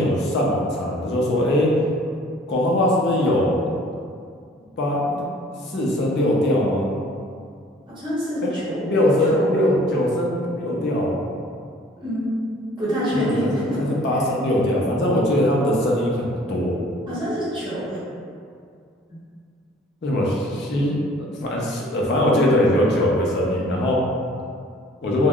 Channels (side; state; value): both; normal; correlation 0.53